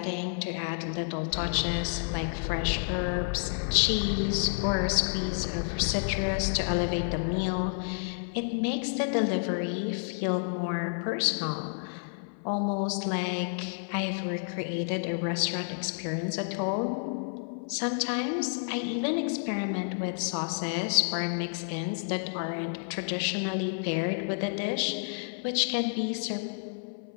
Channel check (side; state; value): right; silent; 55 dB below the other